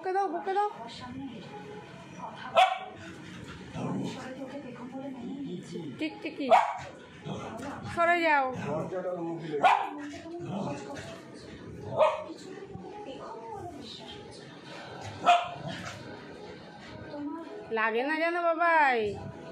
দাও বকে দাও। টিকটিকি সরে যাও। লাগে না জানো বাবাই।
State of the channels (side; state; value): both; identical; correlation 1.00